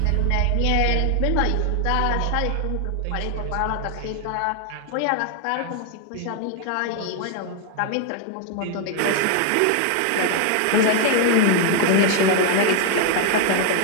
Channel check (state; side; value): different; both; correlation 0.00